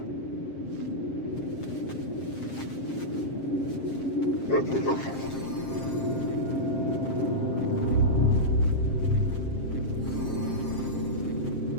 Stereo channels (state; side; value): late; right; 7.5 ms